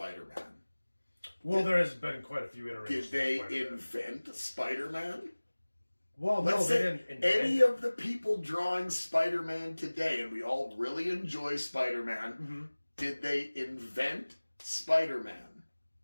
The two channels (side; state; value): both; inverted; correlation -1.00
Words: Well, there has been quite a few iterations. Did they invent Spider-Man? Well, let's they say didn't invent any of the people drawing Spider-Man today, and we all really enjoy Spider-Man, did they invent Spider-Man?